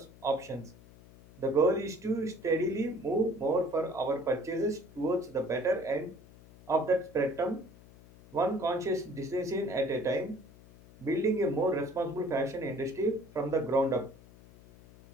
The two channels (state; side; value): noise; left; hum, 22 dB below the sound